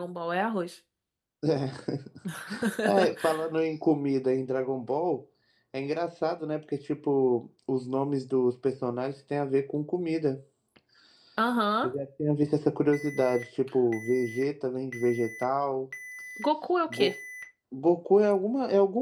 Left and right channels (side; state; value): both; identical; correlation 1.00